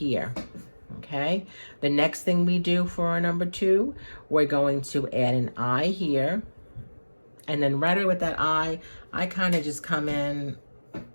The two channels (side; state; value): both; inverted; correlation -1.00